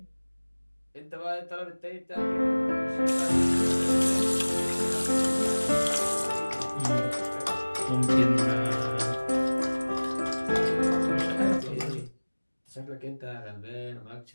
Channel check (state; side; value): inverted; both; correlation -1.00